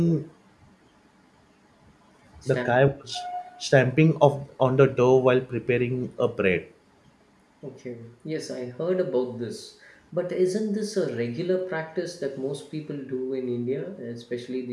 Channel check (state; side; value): identical; both; correlation 1.00